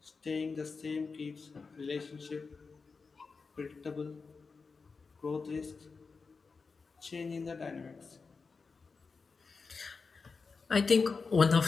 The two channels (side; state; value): right; quieter; 4.6 dB